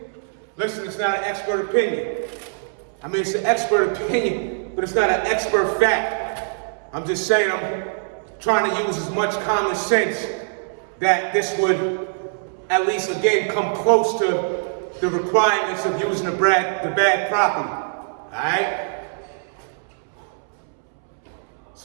Listen, it's not an expert opinion. I mean, it's an expert opinion, but it's not an expert fact. I'm just saying I'm trying to use as much common sense that this would at least, again, come close to the requirements of using the bag properly. All right?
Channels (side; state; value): left; silent; 64 dB below the other